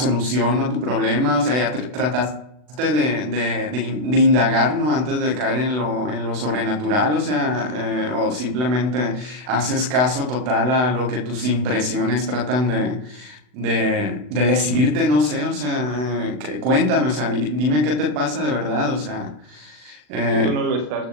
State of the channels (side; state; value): left; late; 40 ms